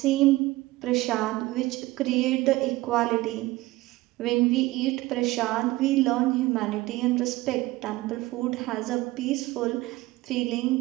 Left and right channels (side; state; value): left; quieter; 18.9 dB